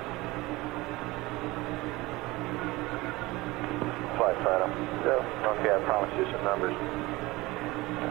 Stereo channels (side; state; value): left; quieter; 20.8 dB